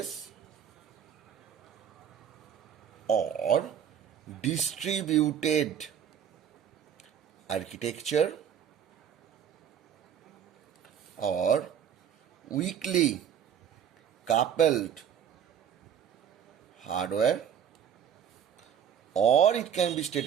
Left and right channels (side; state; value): left; quieter; 8.7 dB